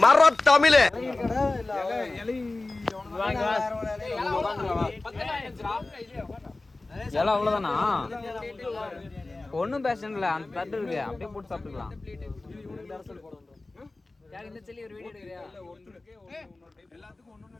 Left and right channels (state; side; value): quieter; right; 3.1 dB